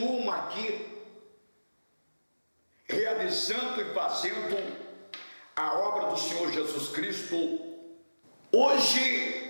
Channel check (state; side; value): inverted; both; correlation -1.00